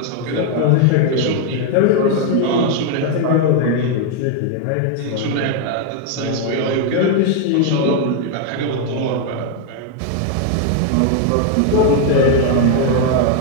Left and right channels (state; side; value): different; both; correlation 0.00